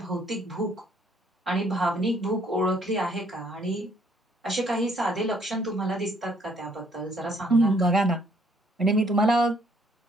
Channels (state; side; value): normal; both; correlation 0.65